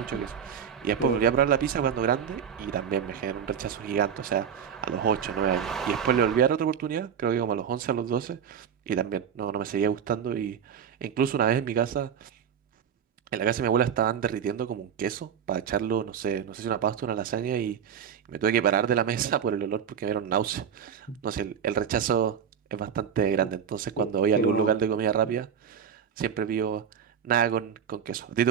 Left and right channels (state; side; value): quieter; left; 8.0 dB